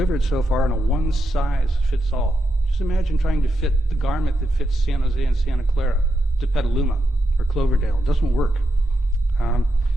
so far in a one-size-fits-all. Just imagine trying to fit the garment that fits San Jose and Santa Clara to Petaluma or Cloverdale. It doesn't work.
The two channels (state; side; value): normal; both; correlation 0.84